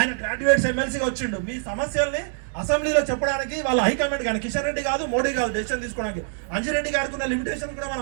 గ్రాడ్యుయేట్స్ ఎమ్మెల్సీగా వచ్చిండు. మీ సమస్యల్ని అసెంబ్లీలో చెప్పడానికి వాళ్ళ హైకమాండ్ కానీ, కిషన్ రెడ్డి కాదు, మోడీ కాదు డెసిషన్ తీసుకోవడానికి. అంజిరెడ్డి గారికి ఉన్న లిమిటేషన్ కూడా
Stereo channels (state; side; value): silent; left; digital silence